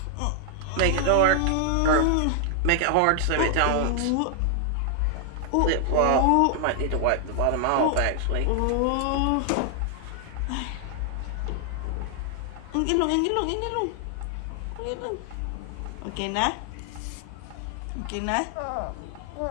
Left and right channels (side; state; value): both; different; correlation 0.00